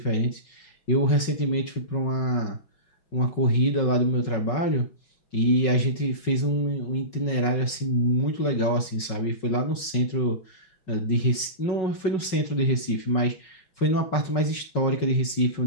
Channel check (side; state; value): right; late; 5.4 ms